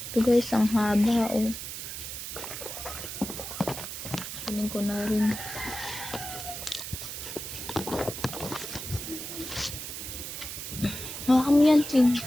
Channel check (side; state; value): right; noise; hiss, 7 dB below the sound